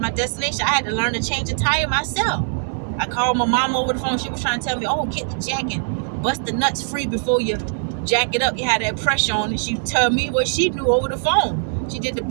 destination, I had to learn to change a tire myself. I called my mom over the phone. She was trying to tell me, oh, get the jack and bust the nuts free before you jack it up. You had that pressure on it. She told me what she knew over the phone. She did the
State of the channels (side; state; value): left; silent; 62 dB below the other